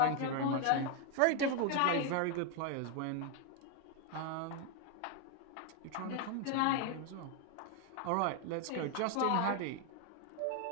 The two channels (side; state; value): both; different; correlation 0.01